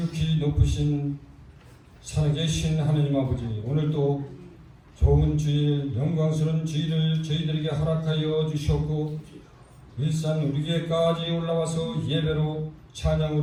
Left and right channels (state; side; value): identical; both; correlation 1.00